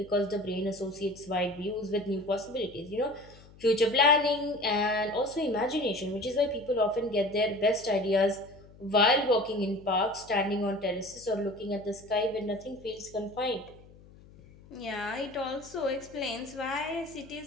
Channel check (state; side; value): noise; left; hum, 23 dB below the sound